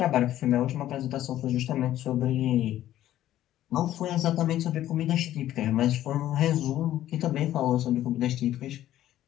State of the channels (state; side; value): quieter; right; 13.0 dB